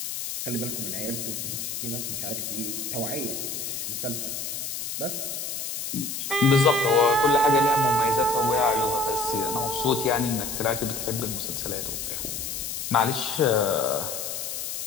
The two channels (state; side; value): noise; left; hiss, 5 dB below the sound